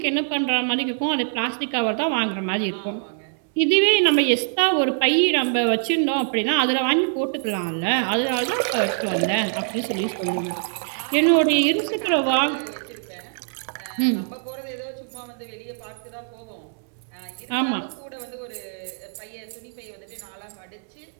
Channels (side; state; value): left; silent; 63 dB below the other